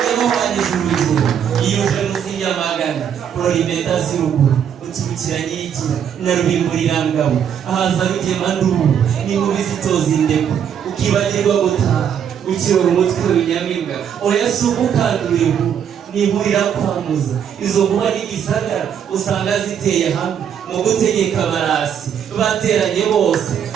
yamuhanije urugero yiyuje munsi y'amagana kurora impeta z'uruguru uturukira nyigira na rubimburirangabo ahaza rugema nduru n'inkubi zitoza indeko ukibagirwa gutaha ukirora umutwe w'inyamibwa oya si ukukandura inkuru nihurira kwamuza izo nkuba n'igisagara usanga ziteye hamwe mu gutegeka abarasi bateranye bose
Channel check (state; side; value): quieter; left; 8.5 dB